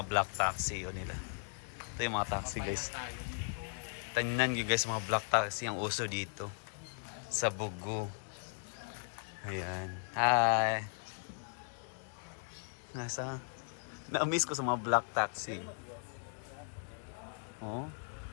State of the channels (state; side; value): silent; right; 53 dB below the other